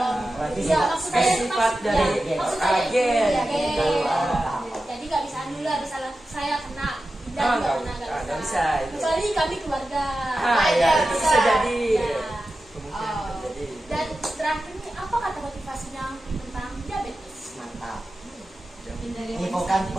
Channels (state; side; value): normal; both; correlation 0.93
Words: Berarti Iya, sifat- maksud saya sifat dari ya, maksud saya agen. iya, Gitu. agen. Jadi nggak bisa nular, misalnya saya kena dan Ah, juga nggak kena nggak bisa itu. Kecuali kami keluarga. Ah ya, itu bisa jadi. Ya. Kemungkinan Oh. terjadi. Dan terakhir nih, apa kata motivasinya tentang diabetes? mantap. Hindari Ini bukan